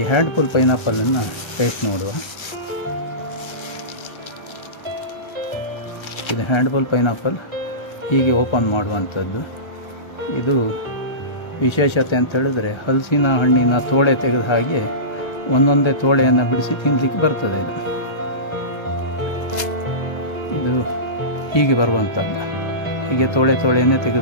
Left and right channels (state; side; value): late; right; 1.3 ms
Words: ಹ್ಯಾಂಡ್ಫುಲ್ ಪೈನಾಪಲನ್ನು ಟೇಸ್ಟ್ ನೋಡುವ. ಇದು ಹ್ಯಾಂಡ್ಫುಲ್ ಪೈನಾಪಲ್ ಹೀಗೆ ಓಪನ್ ಮಾಡುವಂಥದ್ದು. ಇದು ವಿಶೇಷತೆ ಅಂತ ಹೇಳಿದ್ರೆ ಹಲಸಿನ ಹಣ್ಣಿನ ತೋಳೆ ತೆಗೆದ ಹಾಗೆ ಒಂದೊಂದೇ ತೋಳೆಯನ್ನು ಬಿಡಿಸಿ ತಿನ್ನಲಿಕ್ಕೆ ಬರ್ತದೆ. ಇದು ಹೀಗೆ ಬರುವಂಥದ್ದು, ಹೀಗೆ ತೋಳೆಯನ್ನೇ